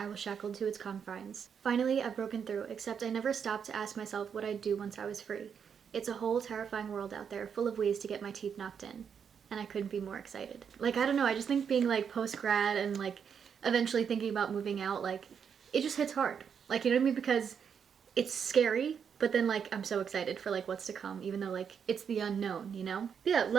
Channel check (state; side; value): quieter; left; 7.2 dB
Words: was shackled to its confines. Finally, I've broken through, except I never stopped to ask myself what I'd do once I was free. It's a whole terrifying world out there, full of ways to get my teeth knocked in. And I couldn't be more excited." Like, I don't know, I just think being like post-grad and like eventually thinking about moving out, like it just hits hard. Like, you know what I mean? Because it's scary, but then like I'm so excited for like what's to come, even though like it's the unknown, you know? But yeah,